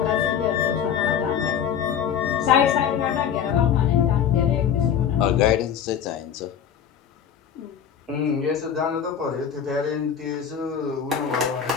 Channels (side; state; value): right; quieter; 8.3 dB